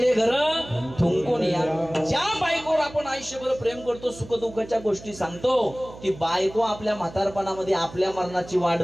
घर थुंकून या. ज्या बायकोवर आपण आयुष्यभर प्रेम करतो, सुख दुःखाच्या गोष्टी सांगतो, ती बायको आपल्या म्हातारपणामध्ये आपल्या मरणाची वाट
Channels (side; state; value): right; noise; hum, 17 dB below the sound